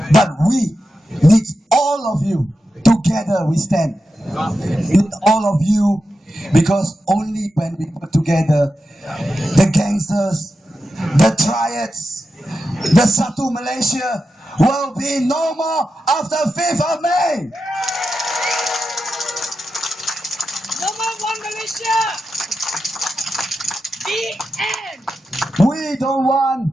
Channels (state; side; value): normal; both; correlation 0.89